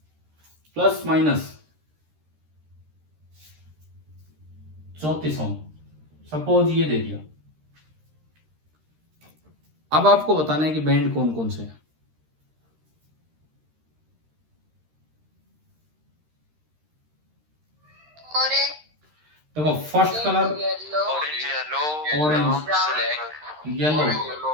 प्लस माइनस 34 ओम, सपोज ये दे दिया। अब आपको बताना है कि बैंड कौन कौन से हैं। देखो first colour orange, yellow.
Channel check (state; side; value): late; left; 13 ms